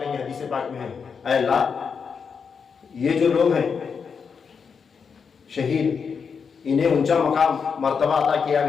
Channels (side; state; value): right; quieter; 6.0 dB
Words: گے. حدیث پاک میں ہے اے اللہ یہ جو لوگ ہیں شہید، انہیں اونچا مقام مرتبہ عطا کیا